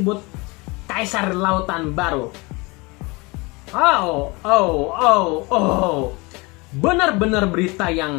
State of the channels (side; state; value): right; quieter; 25.9 dB